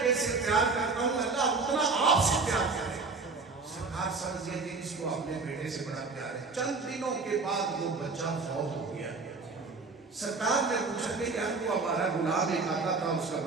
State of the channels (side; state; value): left; quieter; 4.1 dB